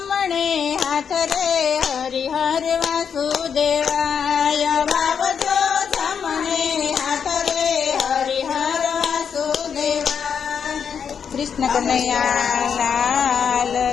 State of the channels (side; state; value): right; quieter; 7.1 dB